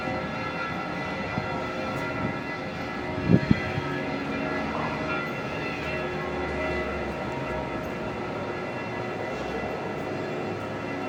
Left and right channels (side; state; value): both; identical; correlation 1.00